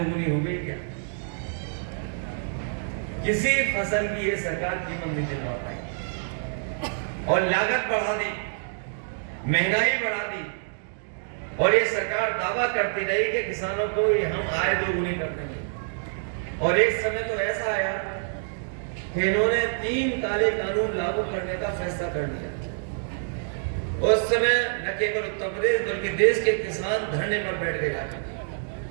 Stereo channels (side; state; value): left; silent; digital silence